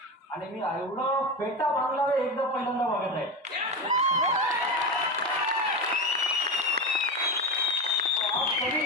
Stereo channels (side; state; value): both; normal; correlation 0.19